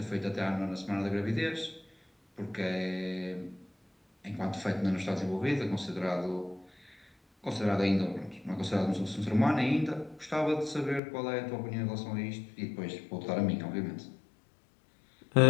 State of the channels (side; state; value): right; drops out; at 11.0 s